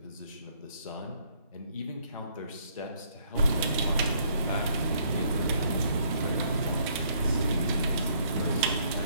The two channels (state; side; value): inverted; both; correlation -0.67